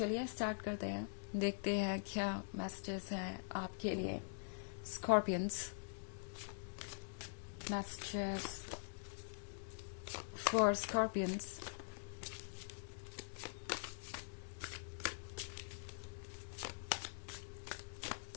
स्टार्ट करते हैं, देखते हैं क्या मैसेजेस हैं आपके लिए scorpions. Messages for scorpions.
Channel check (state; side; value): silent; right; digital silence